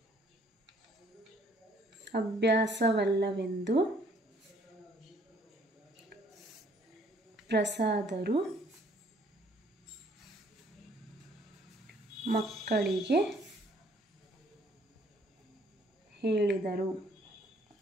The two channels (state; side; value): normal; both; correlation 0.62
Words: ಅಭ್ಯಾಸವಲ್ಲವೆಂದು ಪ್ರಸಾದರು ಮಕ್ಕಳಿಗೆ ಹೇಳಿದರು.